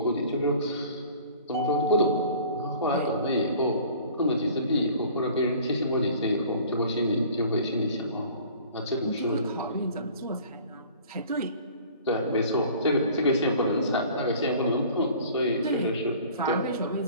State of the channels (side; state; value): both; inverted; correlation -0.48